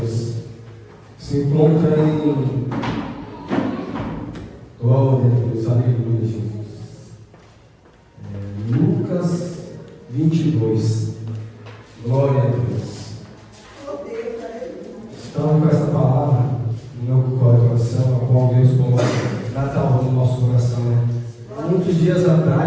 Se encontra em. Glória a Deus, aleluia, Jesus. Lucas 22. Glória a Deus. Então, com essa palavra no meu coração, a qual Deus coloca Natal no nosso coração, né? Muitos dias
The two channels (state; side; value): identical; both; correlation 1.00